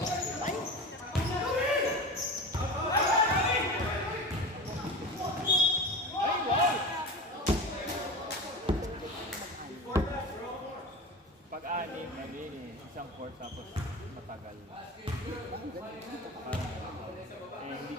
Pag Pag-anim, isang court tapos matagal. Parang, hindi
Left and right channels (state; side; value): normal; both; correlation 0.30